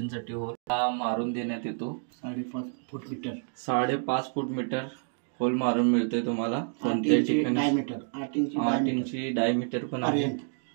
होल मारून देण्यात येतो। 5.5 फूट मीटर होल मारून मिळते तुम्हाला कोणत्याही ठिकाणी। 8 इंची डायमीटर पण आहे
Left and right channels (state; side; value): silent; left; 58 dB below the other